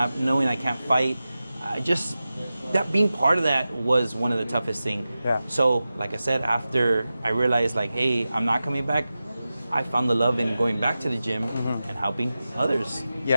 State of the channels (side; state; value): both; inverted; correlation -0.94